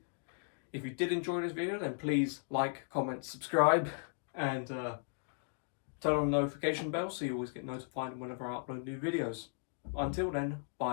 If you did enjoy this video, then please like, comment, subscribe, and turn on the notification bell so you always get notified whenever I upload new videos. Until then,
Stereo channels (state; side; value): silent; right; digital silence